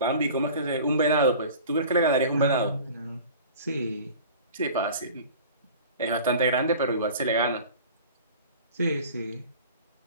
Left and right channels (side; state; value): both; inverted; correlation -0.41